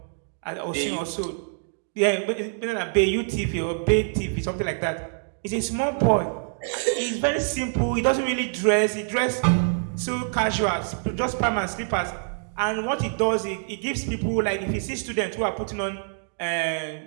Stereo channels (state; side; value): silent; left; digital silence